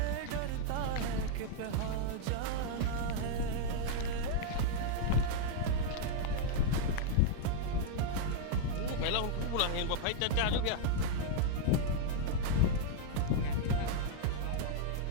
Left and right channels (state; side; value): different; both; correlation -0.02